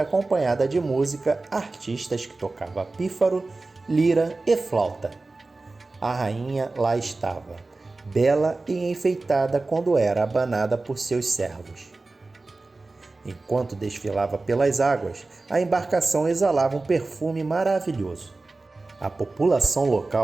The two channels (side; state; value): left; quieter; 3.4 dB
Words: acompanhada de música, artistas que tocavam pífaro, lira e flauta. A rainha lá estava, bela e enfeitada quando era abanada por seus servos. Enquanto desfilava pelas águas, a embarcação exalava um perfume maravilhoso. A população